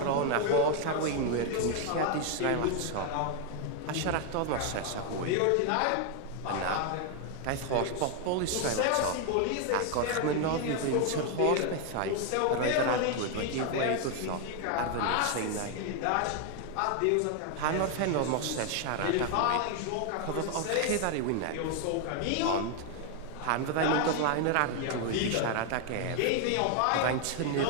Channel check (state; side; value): different; both; correlation 0.00